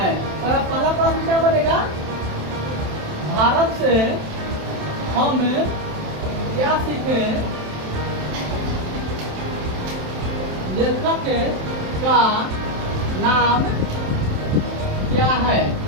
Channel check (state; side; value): late; left; 27 ms